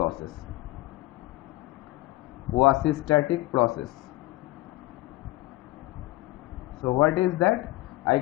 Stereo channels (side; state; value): right; quieter; 18.9 dB